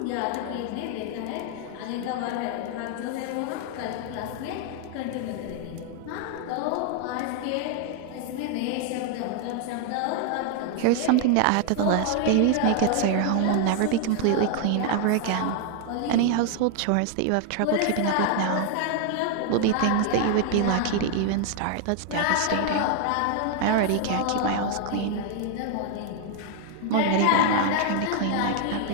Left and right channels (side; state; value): both; different; correlation 0.00